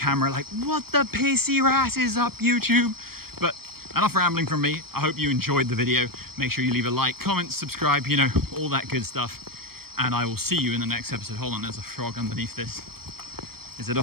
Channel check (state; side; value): late; left; 0.94 ms